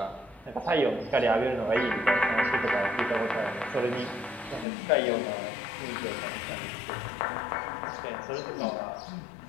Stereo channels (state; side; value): drops out; right; at 4.7 s